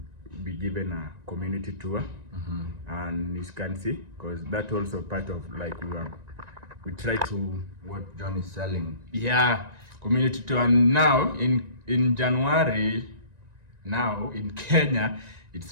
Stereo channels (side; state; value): left; late; 1.9 ms